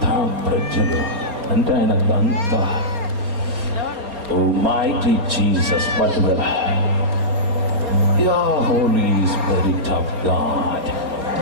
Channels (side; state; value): left; late; 4.3 ms